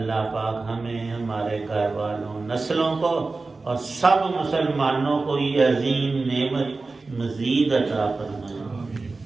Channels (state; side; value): quieter; left; 3.7 dB